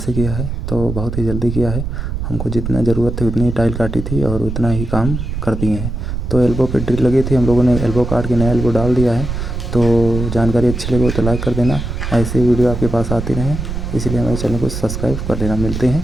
किया है। तो बहुत ही जल्दी किया है। हमको जितना ज़रूरत थी उतनी ही टाइल काटी थी और उतना ही काम कर दिए हैं। तो एल्बो पे ड्रिल लगी थी, हम लोगों ने एल्बो काट के नया एल्बो डाल दिया है। तो जानकारी अच्छी लगे तो लाइक कर देना। ऐसे वीडियो आपके पास आती रहें, इसलिए हमारे चैनल को सब्सक्राइब कर लेना। मिलते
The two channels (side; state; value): right; noise; rumble, 4 dB below the sound